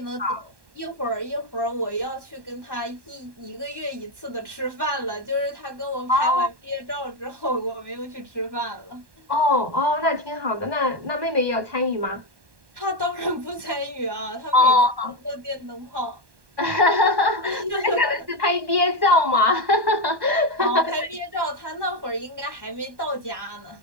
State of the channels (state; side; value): late; left; 1.1 ms